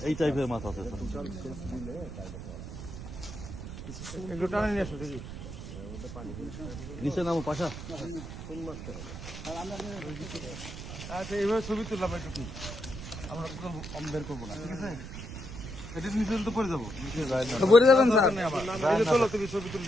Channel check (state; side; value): noise; right; rumble, 10 dB below the sound